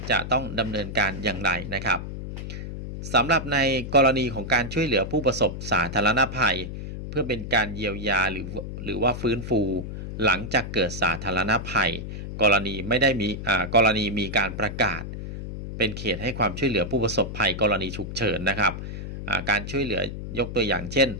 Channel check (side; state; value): left; noise; hum, 8 dB below the sound